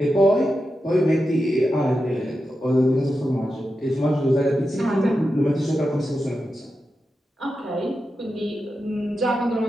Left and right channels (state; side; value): normal; both; correlation 0.89